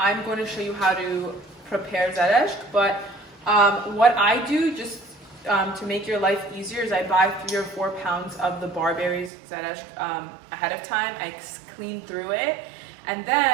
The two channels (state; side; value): drops out; left; at 9.3 s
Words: going to show you how to prepare Zerešk. But what I do, just to make your life easier, is I buy 3 or 4 pounds of the barberries Zerešk ahead of time. I clean through it, and